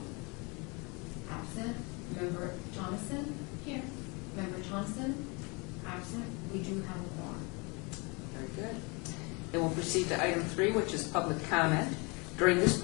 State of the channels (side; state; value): right; quieter; 29.5 dB